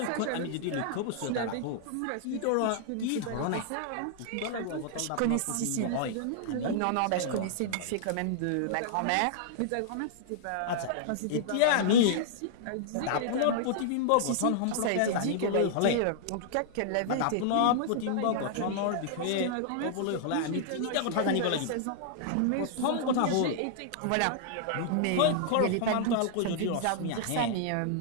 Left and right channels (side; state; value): both; different; correlation -0.01